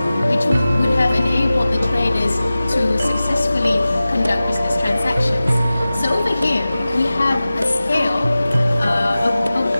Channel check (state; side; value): inverted; both; correlation -0.96